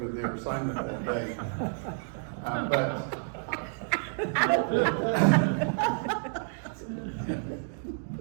with their assignment that day. But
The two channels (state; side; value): silent; left; digital silence